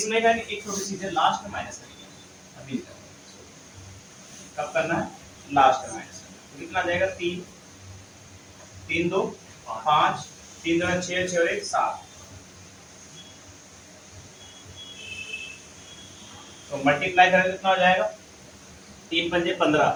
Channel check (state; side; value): identical; both; correlation 1.00